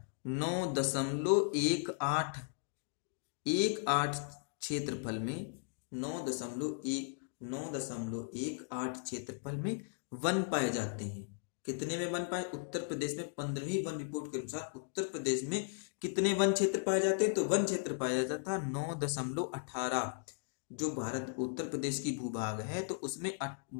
9.18 क्षेत्रफल में, 9.18 क्षेत्रफल में वन पाए जाते हैं। कितने में वन पाए, उत्तर प्रदेश में 15वीं वन रिपोर्ट के अनुसार उत्तर प्रदेश में कितने वन क्षेत्र पाए जाते हैं, तो वन क्षेत्र पाया जाता था 9.18। जो भारत उत्तर प्रदेश की भूभाग है तो उसमें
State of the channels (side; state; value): right; silent; digital silence